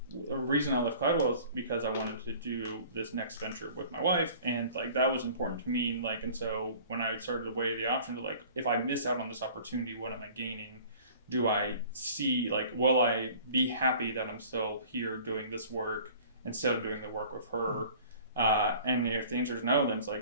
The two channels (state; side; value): inverted; both; correlation -0.47